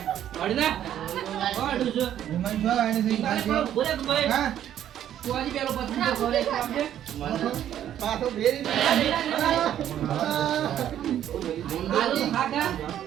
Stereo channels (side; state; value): left; quieter; 10.9 dB